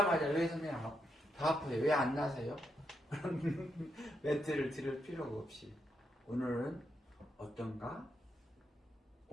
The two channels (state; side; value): normal; both; correlation 0.81